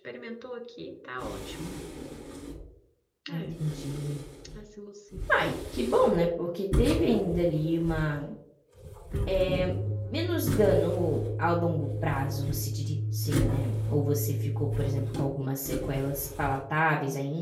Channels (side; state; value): both; identical; correlation 1.00